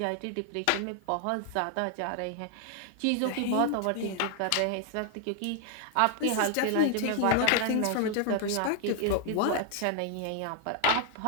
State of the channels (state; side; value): different; both; correlation 0.00